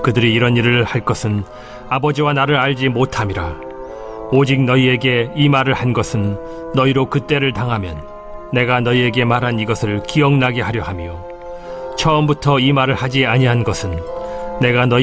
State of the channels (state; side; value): identical; both; correlation 1.00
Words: 그들이 이런 일을 할 것은 아버지와 나를 알지 못함이라. 오직 너희에게 이 말을 한 것은 너희로 그때를 당하면 내가 너희에게 말한 이것을 기억나게 하려 함이요 처음부터 이 말을 하지 아니한 것은 내가